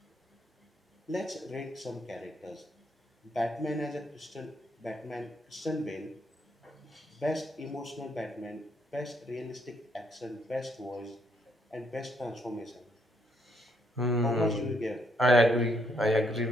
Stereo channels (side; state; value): both; normal; correlation 0.73